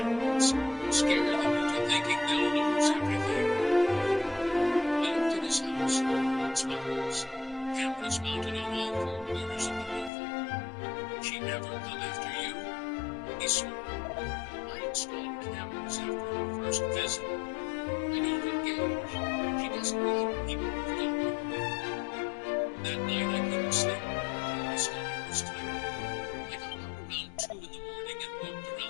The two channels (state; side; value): drops out; right; at 10.1 s